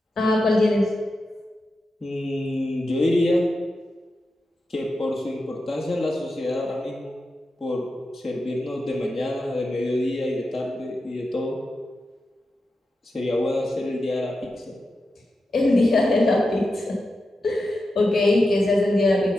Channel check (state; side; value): normal; both; correlation 0.90